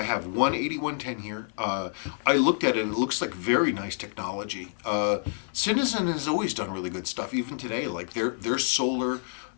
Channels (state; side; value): silent; right; digital silence